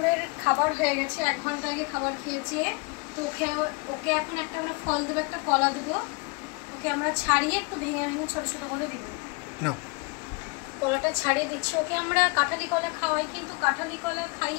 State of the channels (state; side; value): quieter; right; 31.1 dB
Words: খাবার হয়ে গেছে, 1 ঘন্টা আগে খাবার খেয়েছে। তো ওকে এখন একটা করে ফল দেবো, একটা কলা দেবো। ওকে আমরা ছাড়িয়ে একটু ভেঙে ভেঙে ছোট ছোট করে দিব। কলাটা ছাড়িয়ে দিচ্ছি। ওকে আমরা কাঁঠালি কলা খাওয়াই, কিন্তু কাঁঠালি কলা